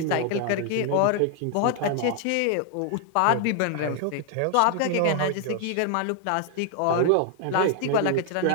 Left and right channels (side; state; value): both; different; correlation 0.00